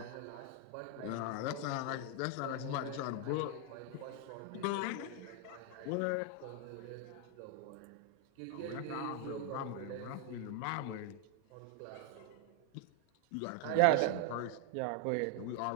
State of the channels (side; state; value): both; different; correlation 0.00